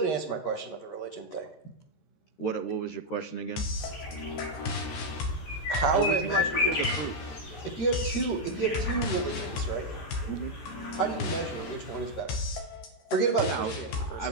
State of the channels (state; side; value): late; right; 14 ms